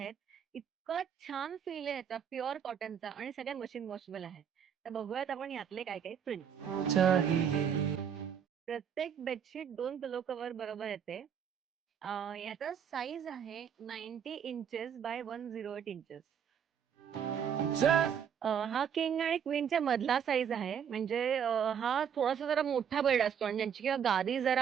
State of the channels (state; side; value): quieter; left; 8.1 dB